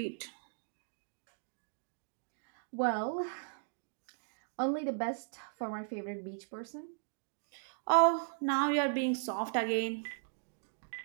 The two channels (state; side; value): silent; left; digital silence